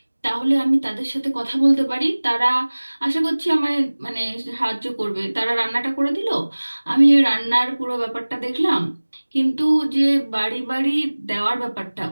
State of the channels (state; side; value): inverted; both; correlation -1.00